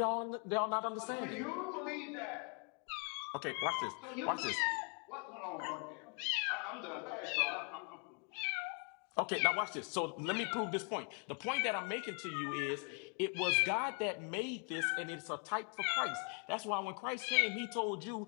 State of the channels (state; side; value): quieter; right; 39.4 dB